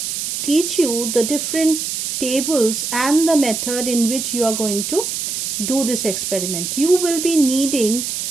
teach you the different tables and the method in which you are going to do this experiment. You will be needing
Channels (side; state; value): right; noise; hiss, 3 dB below the sound